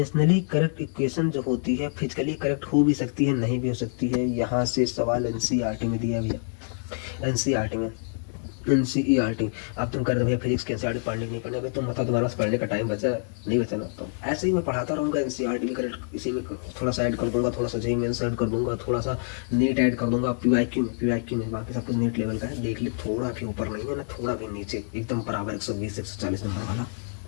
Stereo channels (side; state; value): right; silent; 61 dB below the other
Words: correct equation जो होती है फिजिकली करेक्ट हो भी सकती है, नहीं भी हो सकती है। यहाँ से सवाल एनसीईआरटी में दिया भैया, एनसीईआरटी में, एनसीईआरटी। अब तुम कर दो भैया फिजिक्स के एनसीईआरटी पढ़ने नहीं पढ़ने, तुम बताओ तुम्हारे पास पढ़ने का टाइम बचा नहीं बचा ना? तो ऐसे ही मैं पढ़ाता रहूँगा, एनसीईआरटी भी करेक्ट, इसी में थोड़ा सा ऐड कर दूंगा, थोड़ा सा जेईई मेंस ऐड कर दूंगा, थोड़ा सा नीट ऐड कर दूंगा, पीवाईक्यू में बाकी सब कुछ नीट लेवल का है। देख ले, थोड़ा भी ऊपर नहीं है ना, थोड़ा भी नीचे, एकदम बराबर 120-140 नंबर वाला।